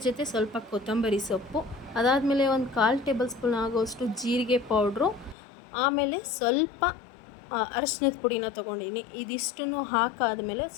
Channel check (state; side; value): drops out; right; at 5.4 s